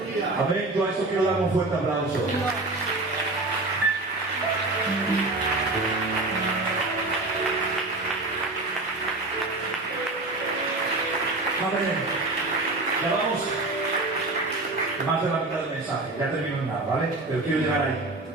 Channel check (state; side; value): quieter; left; 3.1 dB